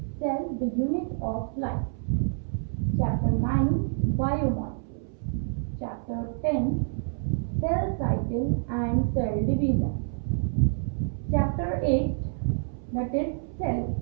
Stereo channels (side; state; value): left; silent; 60 dB below the other